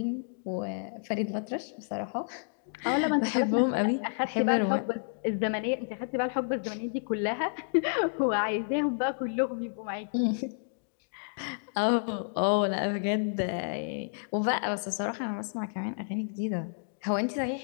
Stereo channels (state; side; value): silent; right; digital silence